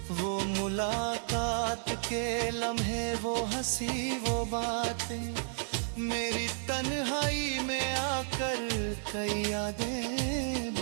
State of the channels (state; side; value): silent; left; 56 dB below the other